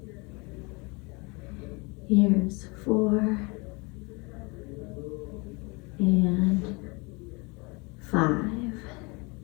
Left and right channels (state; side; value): quieter; right; 28.4 dB